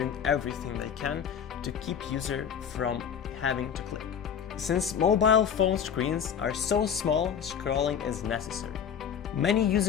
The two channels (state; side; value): quieter; right; 7.9 dB